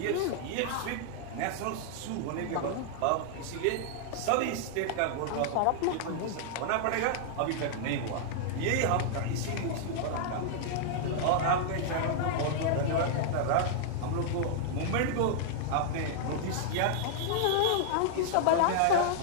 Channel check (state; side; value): different; both; correlation -0.01